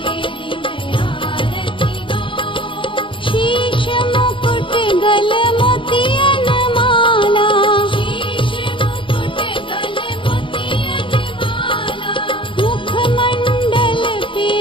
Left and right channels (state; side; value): late; right; 0.25 ms